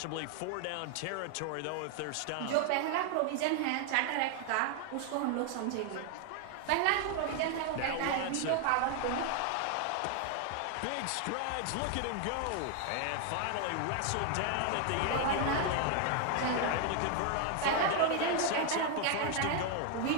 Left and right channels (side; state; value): both; different; correlation 0.01